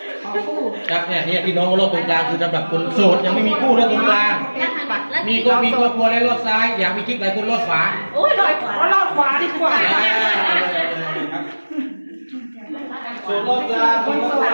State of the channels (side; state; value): both; inverted; correlation -1.00